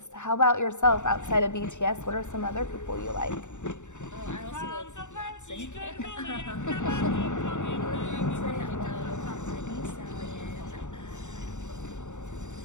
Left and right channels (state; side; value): late; right; 0.84 ms